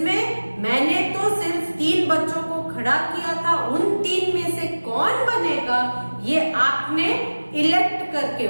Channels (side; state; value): both; inverted; correlation -1.00